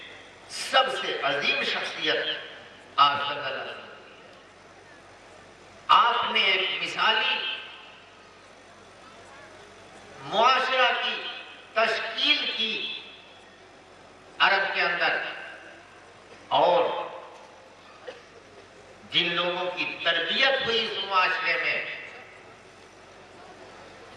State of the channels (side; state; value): both; identical; correlation 1.00